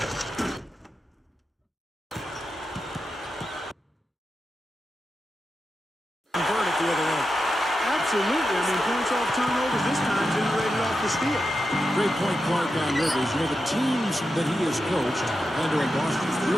convert at the other end. Absolutely. I mean, points off turnovers this time generated off the steal. Great point, Clark, on Rivers. You know, the teams that he has coached, Orlando and Boston,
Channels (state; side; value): normal; both; correlation 0.89